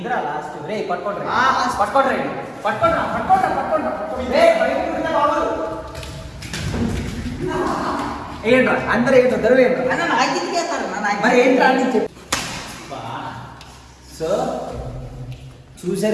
లాస్ట్ రే పట్టుకోండి పట్టుకోండి ఏంట్రా అందరూ ఏంటో దొరవ మరి ఏంట్రా అని చెప్పి. సో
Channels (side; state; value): both; identical; correlation 1.00